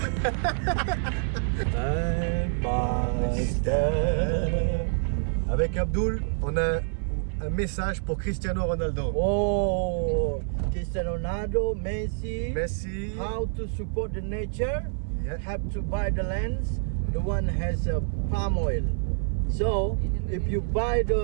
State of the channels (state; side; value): silent; left; 60 dB below the other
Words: Avec Abdul, on a un message pour Cristiano Ronaldo. Oh, Cristiano Ronaldo, Messi. How to support the nature? Yeah. Have to buy the lands. The one has palm oil. So, if you buy